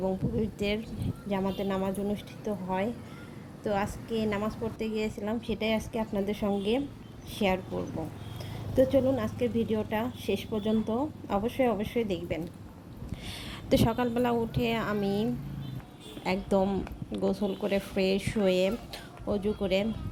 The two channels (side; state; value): both; identical; correlation 1.00